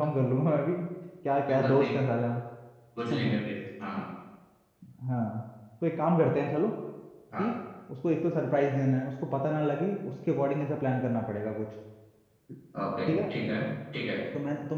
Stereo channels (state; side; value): identical; both; correlation 1.00